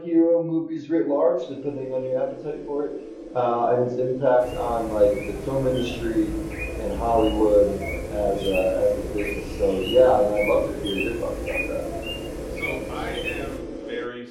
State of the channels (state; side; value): identical; both; correlation 1.00